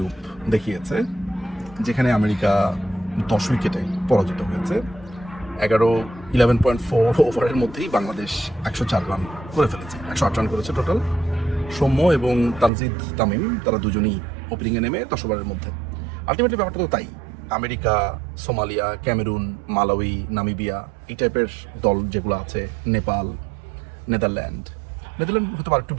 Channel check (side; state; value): left; drops out; at 12.7 s